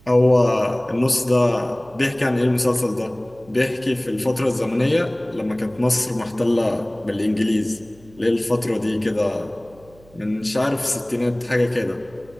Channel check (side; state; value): right; noise; hum, 26 dB below the sound